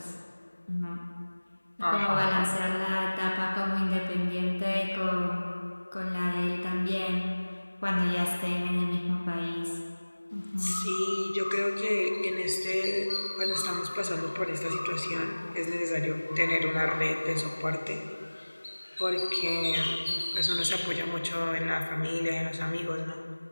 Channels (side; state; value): both; inverted; correlation -1.00